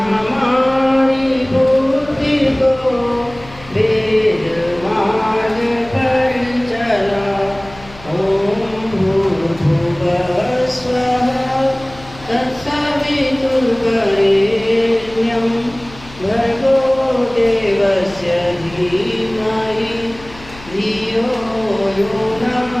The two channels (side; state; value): left; noise; hum, 20 dB below the sound